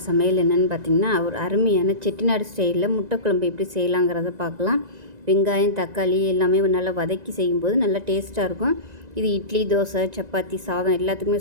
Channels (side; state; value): left; late; 1.9 ms